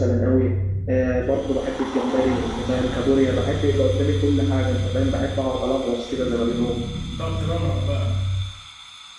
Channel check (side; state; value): both; identical; correlation 1.00